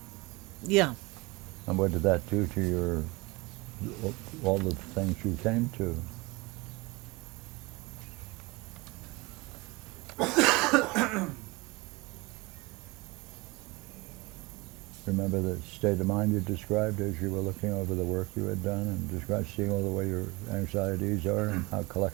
Yeah. And what did that do to all the things you came to? Remember the state of mind you described as you were looking over the work you had done and described seeing all the way your anxieties are and how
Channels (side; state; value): left; quieter; 24.2 dB